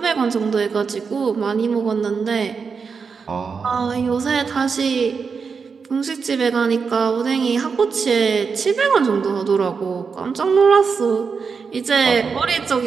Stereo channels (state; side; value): quieter; left; 5.5 dB